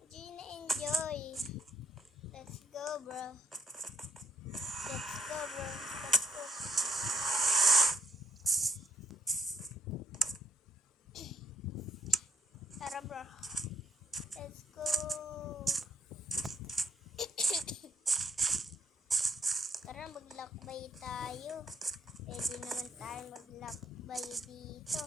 enjoy. Let's go, bro. Let's go, bro. Let's go. Tara, bro. Let's go. Tara, maglakbay tayo. Pwede naman tayo maglakbay dito.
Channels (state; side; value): normal; both; correlation 0.72